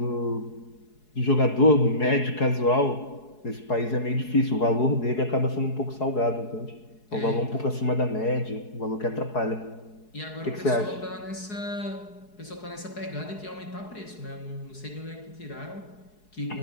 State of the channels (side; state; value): right; late; 4.7 ms